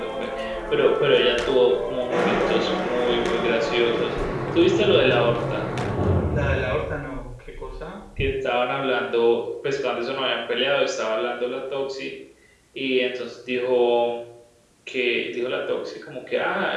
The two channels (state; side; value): identical; both; correlation 1.00